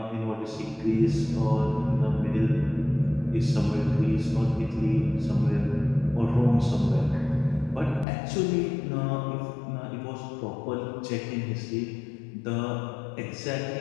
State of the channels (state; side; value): drops out; right; at 8.1 s